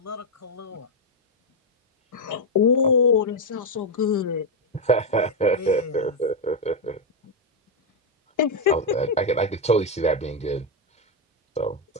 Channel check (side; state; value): both; normal; correlation 0.02